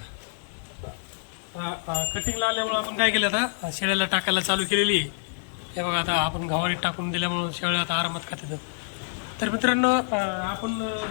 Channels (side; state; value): right; silent; 60 dB below the other